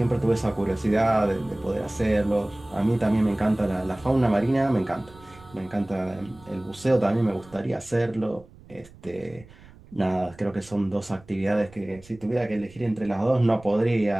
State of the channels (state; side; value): noise; right; rumble, 23 dB below the sound